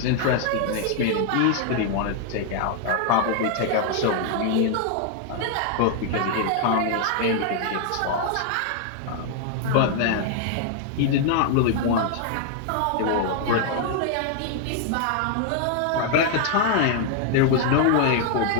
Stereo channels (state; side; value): different; both; correlation 0.00